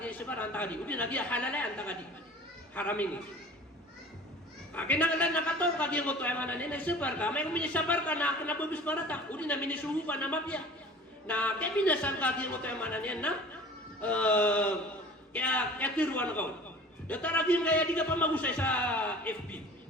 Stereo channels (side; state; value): both; normal; correlation 0.43